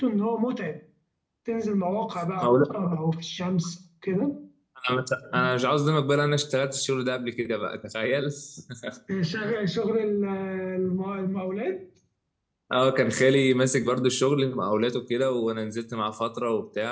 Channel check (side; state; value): both; identical; correlation 1.00